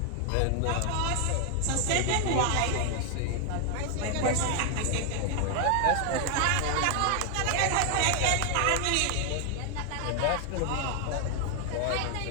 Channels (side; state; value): both; different; correlation 0.00